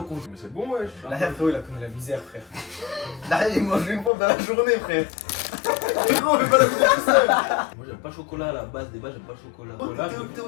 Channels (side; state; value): right; drops out; at 4.1 s